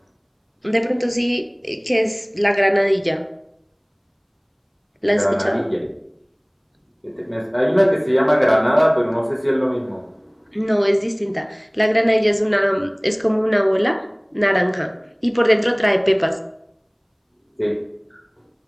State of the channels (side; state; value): both; identical; correlation 1.00